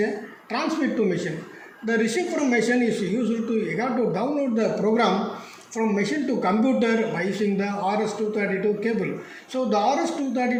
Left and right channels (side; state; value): both; identical; correlation 1.00